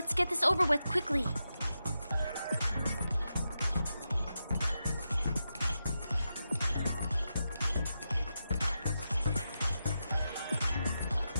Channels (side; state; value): both; inverted; correlation -0.88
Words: get this over with quickly.